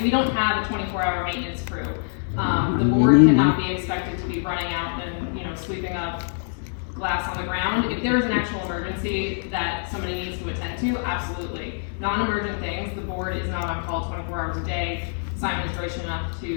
We don't have a 24-hour maintenance crew. The board cannot be expected to be running out and, sweeping up glass on the ground. If there is an actual emergency that somebody needs to attend to, absolutely. Non-emergent things, the board is not on call 24 hours a day. Simon is gracious enough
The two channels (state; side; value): silent; right; 62 dB below the other